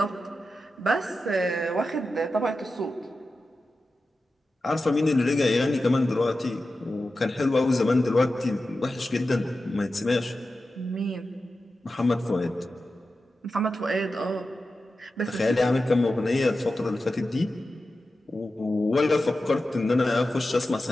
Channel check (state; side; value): normal; both; correlation 0.92